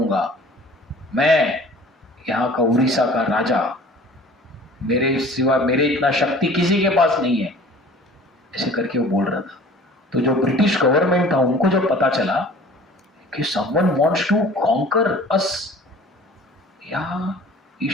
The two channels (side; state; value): both; normal; correlation 0.47